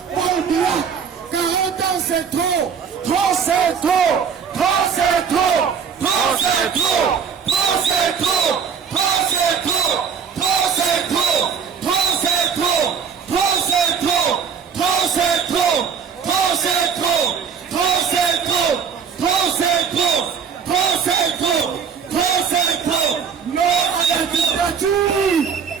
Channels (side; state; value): left; quieter; 6.7 dB